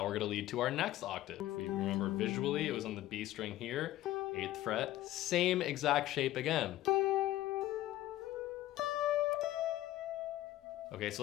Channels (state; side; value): quieter; right; 15.0 dB